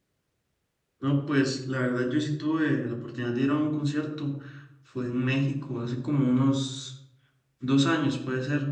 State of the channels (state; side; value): identical; both; correlation 1.00